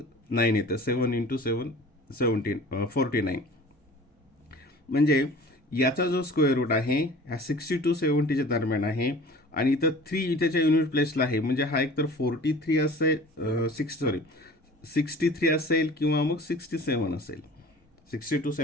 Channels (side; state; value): both; normal; correlation 0.44